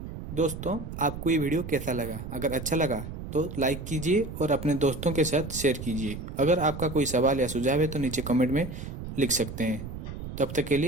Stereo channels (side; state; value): right; noise; rumble, 9 dB below the sound